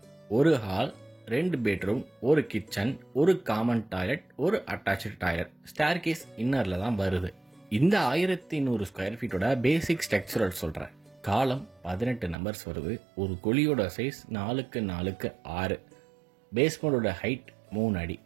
ஒரு ஹால், 2 பெட்ரூம், ஒரு கிச்சன், ஒரு காமன் டாய்லெட், ஒரு அட்டாச்சு டாய்லெட், ஸ்டேர் கேஸ் இன்னரில் தான் வருது. இந்த 1100 ஸ்கொயர் ஃபீட்டோட பேசிக் ஸ்ட்ரக்சரல் சொல்கிறேன். காலம் 18 நம்பர்ஸ் வருது. ஒரு குழியோட சைஸ் 4x4, பேஸ்மெண்டோட ஹைட் 3 அடி.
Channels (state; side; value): drops out; left; at 12.4 s